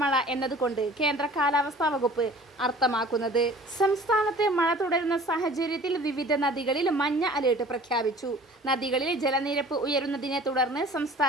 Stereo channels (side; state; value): both; normal; correlation 0.47